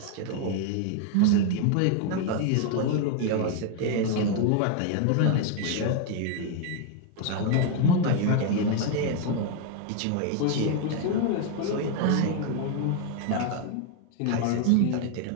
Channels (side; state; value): both; different; correlation 0.01